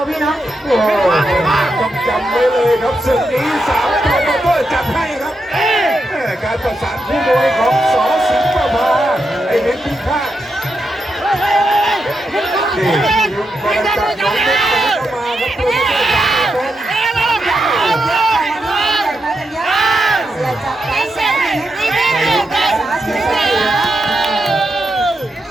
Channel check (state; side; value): normal; both; correlation 0.85